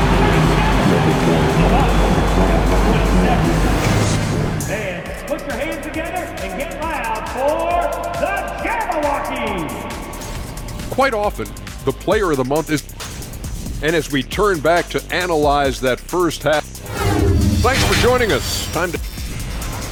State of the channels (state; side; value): identical; both; correlation 1.00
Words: And put your hands together and get loud for the Jabberwockies. Quite often, the player of the month is... And as we turn back to analyze that first half... Thanks for joining us. Time to...